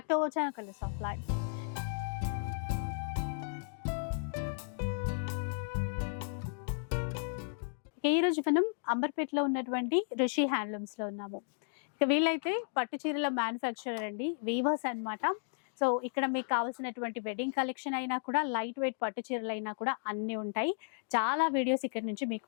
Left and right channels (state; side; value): silent; right; digital silence